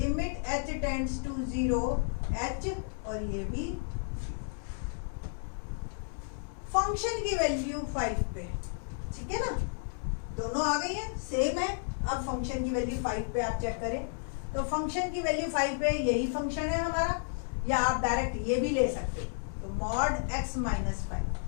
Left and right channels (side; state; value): right; silent; 56 dB below the other